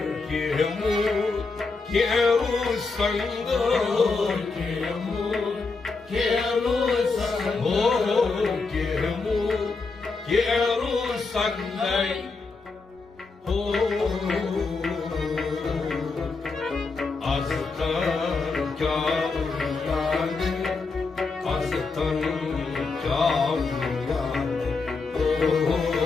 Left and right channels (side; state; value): right; quieter; 4.2 dB